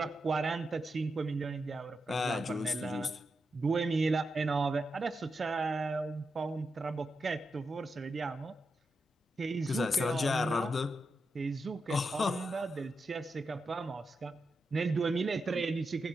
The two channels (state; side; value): normal; both; correlation 0.87